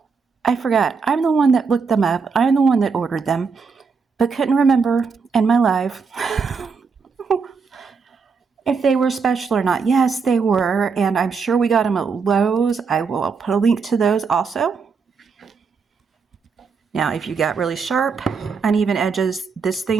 I forgot. I'm the one that looked them up. I'm the one that ordered them, but couldn't remember in my life if they were special or not. Yes, they were, and I'm sure we got them at Lowe's. I will put a link to those also. Now, if you got really sharp, uneven edges, this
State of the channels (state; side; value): quieter; left; 5.3 dB